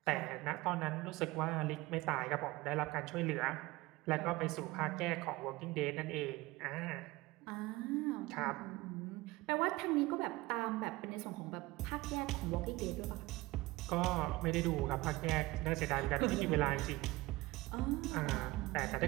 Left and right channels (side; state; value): left; quieter; 20.4 dB